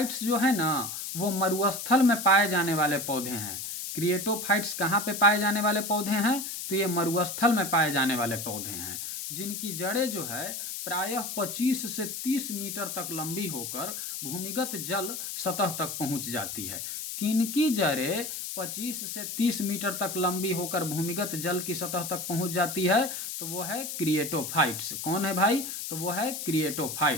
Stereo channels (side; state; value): left; noise; hiss, 6 dB below the sound